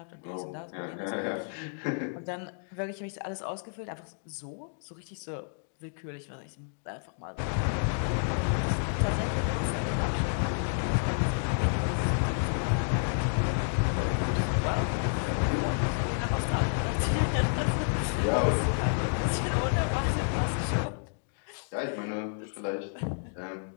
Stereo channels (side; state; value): right; silent; digital silence